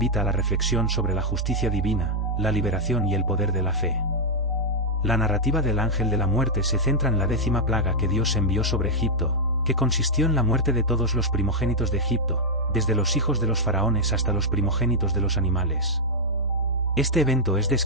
a la reflexión sobre la justicia divina, la liberación y el poder de la fe. La narrativa del ángel de la muerte se centra en la 10ª plaga que Dios envió sobre Egipto, que consistió en la muerte de todos los primogénitos de Egipto, desde los hijos de los faraones hasta los primogénitos de los animales. Este evento es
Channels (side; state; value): both; normal; correlation -0.03